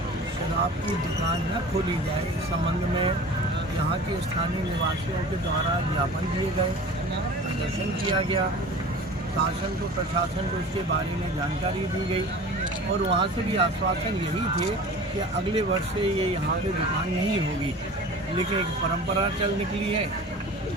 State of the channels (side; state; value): both; normal; correlation 0.39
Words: शराब की दुकान न खोली जाए, इस संबंध में यहाँ के स्थानीय निवासियों के द्वारा ज्ञापन दिए गए, प्रदर्शन किया गया, शासन को प्रशासन को इसके बारे में जानकारी दी गई, और वहाँ से भी आश्वासन यही थे कि अगले वर्ष से ये यहाँ पे दुकान नहीं होगी। लेकिन एक परंपरा चल निकली है।